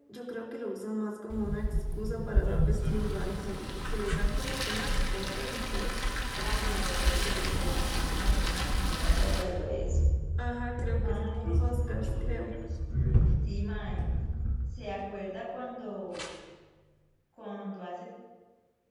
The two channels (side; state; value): both; identical; correlation 1.00